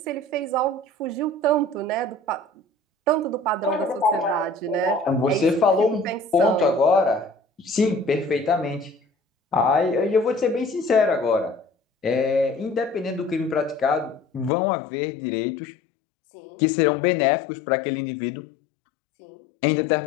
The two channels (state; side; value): drops out; right; at 14.5 s